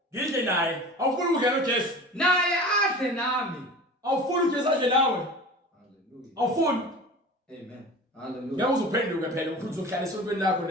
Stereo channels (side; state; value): both; normal; correlation 0.37